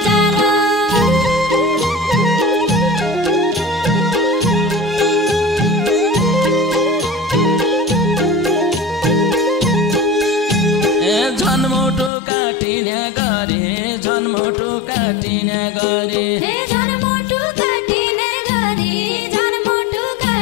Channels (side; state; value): right; drops out; at 12.1 s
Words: जाल झन्मुटु काटिने गरी झन्मुटु काटिने गरी हे झन्मुटु काटिने गरी झन्मुटु